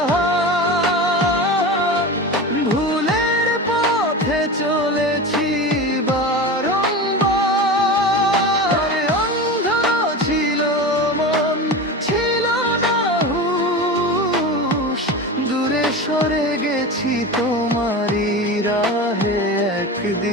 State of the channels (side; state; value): both; normal; correlation 0.27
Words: ভুলের পথে চলেছি বারংবার। অন্ধ ছিল মন, ছিল না হুঁশ, দূরে সরে গেছি তোমারই রাহে।